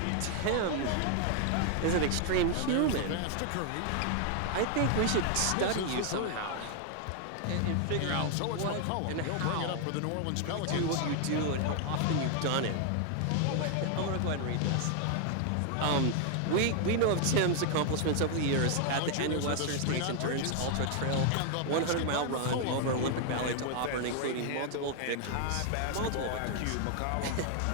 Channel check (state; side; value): different; both; correlation 0.00